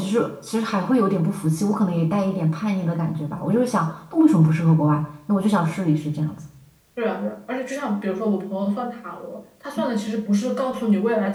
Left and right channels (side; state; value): both; identical; correlation 1.00